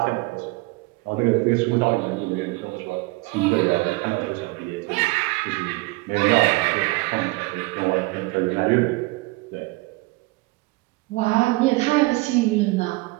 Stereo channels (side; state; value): left; quieter; 23.0 dB